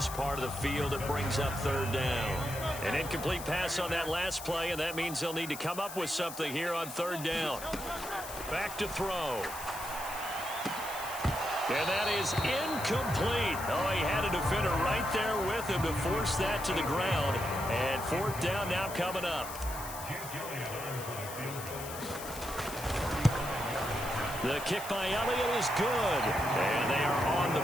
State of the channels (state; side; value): noise; left; hiss, 11 dB below the sound